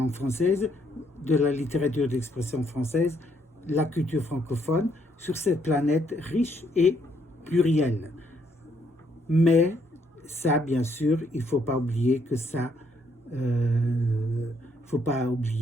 française, de la littérature d'expression française, la culture francophone, sur cette planète riche et plurielle. Mais ça, bien sûr, il ne faut pas oublier que ça, il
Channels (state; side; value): normal; both; correlation 0.71